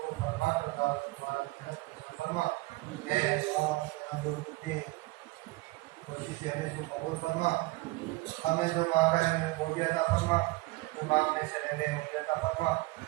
فرما کر دعوت تمہارا فرما. اے اللہ کوشش سے ہمیں کو قبول فرما. ہمیں جو مانگا ہے ہمیں وہ بھی عطا فرما, جو مانگنے سے رہے وہ بھی عطا فرما.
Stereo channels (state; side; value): quieter; left; 22.0 dB